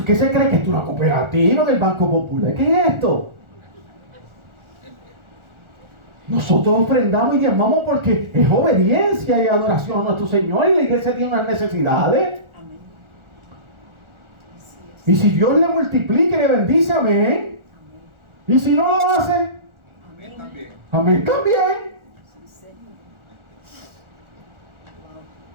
¿qué se cree? Que esto es una cooperativa del Banco Popular. ¿Qué es esto? Nosotros ofrendamos y llamamos porque es obediencia y adoración a nuestro Señor, y la iglesia tiene unas necesidades. Y si Dios le multiplica y le bendice, amén. Y si no lo hace, amén también. Amén también.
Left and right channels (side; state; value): left; late; 1.4 ms